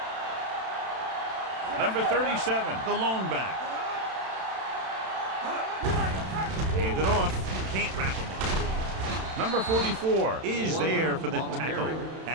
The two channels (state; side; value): late; left; 31 ms